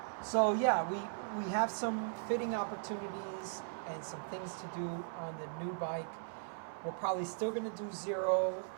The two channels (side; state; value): left; silent; 52 dB below the other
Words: So yeah, we have some fitting opportunities and some things to do on the new bike. We're probably still going to do zero.